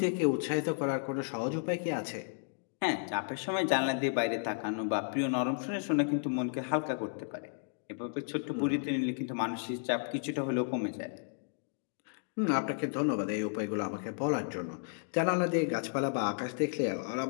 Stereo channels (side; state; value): right; silent; digital silence